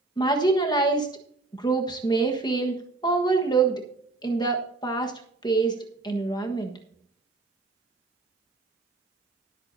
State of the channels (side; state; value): left; quieter; 3.4 dB